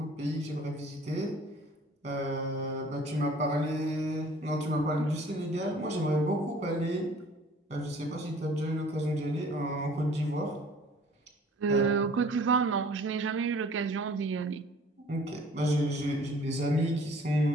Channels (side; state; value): both; normal; correlation 0.52